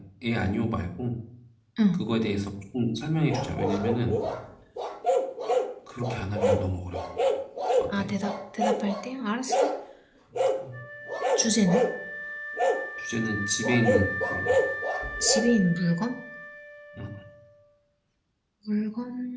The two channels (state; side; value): identical; both; correlation 1.00